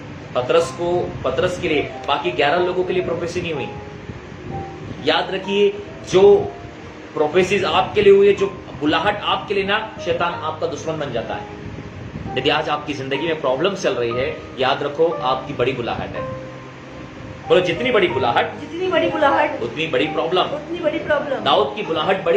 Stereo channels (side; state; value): both; identical; correlation 1.00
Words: पतरस के लिए, बाकी 11 लोगों के लिए प्रोफेसी नहीं हुई। याद रखिए, जो प्रोफेसीज आपके लिए हुई है, जो बुलाहट आपके लिए ना, शैतान आपका दुश्मन बन जाता है। यदि आज आपकी जिंदगी में प्रॉब्लम चल रही है, याद रखो आपकी बड़ी बुलाहट है। बोलो जितनी बड़ी बुलाहट उतनी बड़ी प्रॉब्लम। दाऊद की बुलाहट